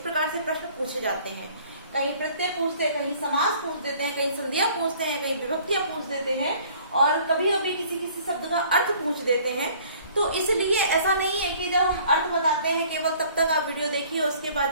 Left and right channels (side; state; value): both; inverted; correlation -0.54